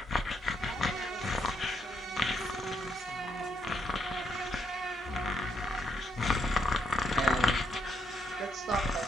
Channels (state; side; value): normal; both; correlation 0.76